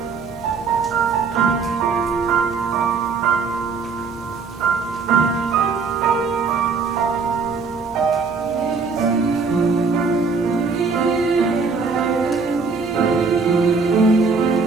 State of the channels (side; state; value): left; quieter; 4.8 dB